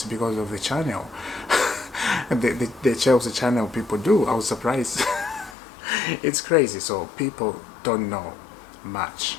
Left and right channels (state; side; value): drops out; right; at 5.6 s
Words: because of the channel. the Chelsea channel people do. I was surprised. It's crazy. So people don't know much,